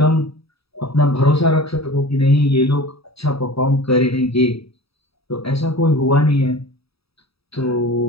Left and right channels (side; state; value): right; late; 0.77 ms